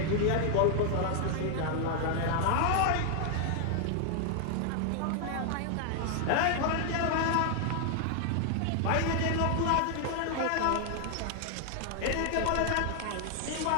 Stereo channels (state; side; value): different; both; correlation 0.00